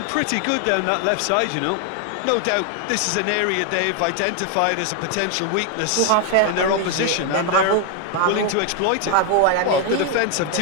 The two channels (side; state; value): both; different; correlation 0.00